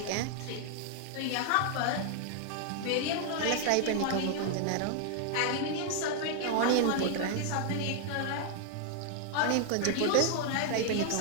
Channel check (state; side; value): different; both; correlation 0.00